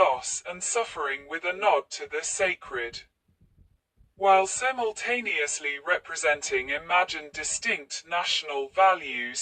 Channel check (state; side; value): identical; both; correlation 1.00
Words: and suffering with a nod to the sacred, while simultaneously representing imagined distinct national values